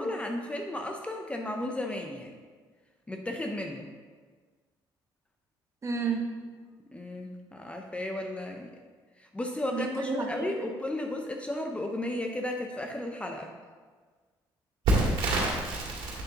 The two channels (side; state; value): both; normal; correlation 0.64